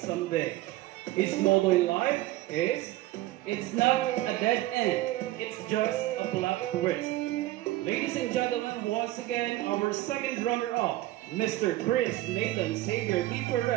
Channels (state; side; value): quieter; left; 16.5 dB